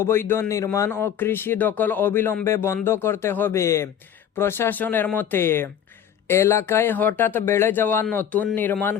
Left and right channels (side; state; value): right; quieter; 9.3 dB